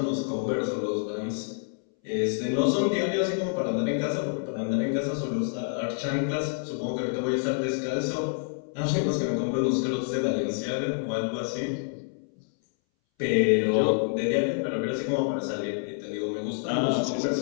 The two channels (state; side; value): silent; right; 60 dB below the other